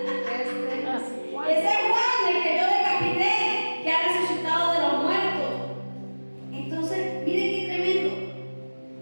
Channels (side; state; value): both; inverted; correlation -1.00